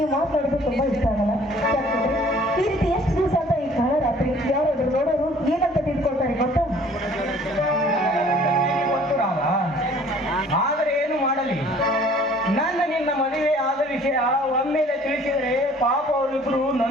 ಮಾತಾಡೋದು ತುಂಬಾ ಇಷ್ಟ ಆಗಲ್ಲ. ಯಾಕಂದ್ರೆ ಈ ರೀತಿ ಎಷ್ಟು ದಿವಸ ಅಂತ ಈ ಕಾಲ ರಾತ್ರಿ ಯಾರಾದ್ರೂ ನೋಡೋರು ಏನಂತ ತಿಳ್ಕೊಳ್ತಾರೆ ಗೊತ್ತಾ? ಆದರೆ ಏನು ಮಾಡಲಿ, ನನ್ನ ನಿನ್ನ ಮದುವೆ ಆದ ವಿಷಯ ಒಮ್ಮೆಲೆ ತಿಳಿಸಿದರೆ ಪಾಪ ಅವರಿಬ್ಬರು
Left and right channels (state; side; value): normal; both; correlation 0.54